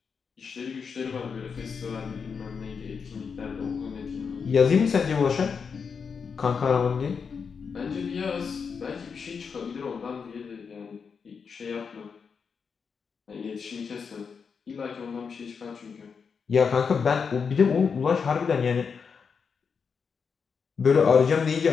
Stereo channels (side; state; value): right; quieter; 5.9 dB